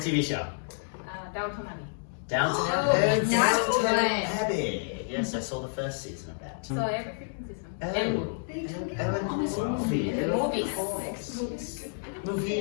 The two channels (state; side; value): silent; right; digital silence